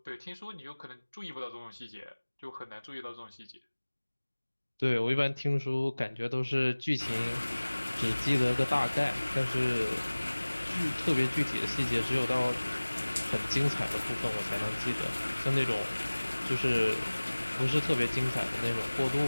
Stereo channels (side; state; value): both; inverted; correlation -1.00